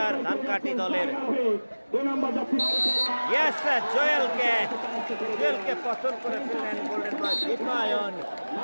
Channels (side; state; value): both; inverted; correlation -1.00